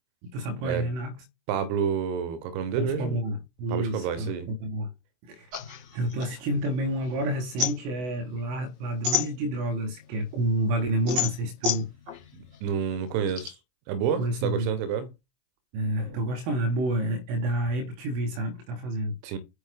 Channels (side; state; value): left; late; 24 ms